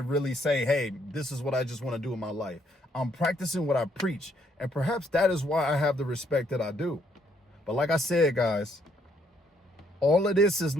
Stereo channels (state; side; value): normal; both; correlation 0.70